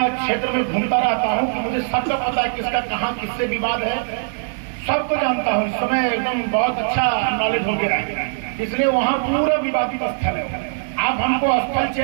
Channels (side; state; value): left; silent; digital silence